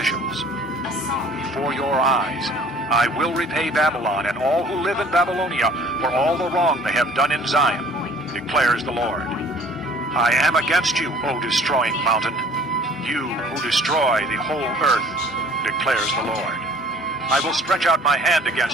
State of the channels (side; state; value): both; normal; correlation 0.52